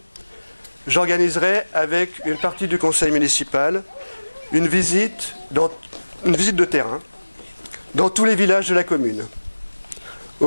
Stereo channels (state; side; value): inverted; both; correlation -1.00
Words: j'organiserai avec une partie du conseil municipal une visite de terrain dans tous les villages de la commune,